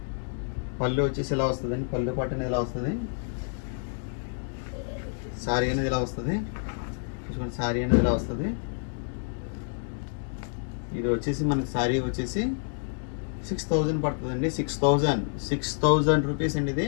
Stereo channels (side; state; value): right; silent; digital silence